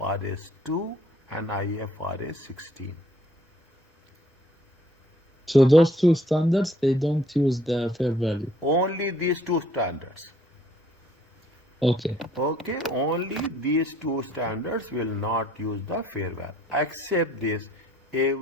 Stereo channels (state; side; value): normal; both; correlation 0.61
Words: 2 and IFRS 16. So those two standards, they don't use the fair value. Only these two standards. Okay. Okay, only these two standards will not use the fair value. Except this,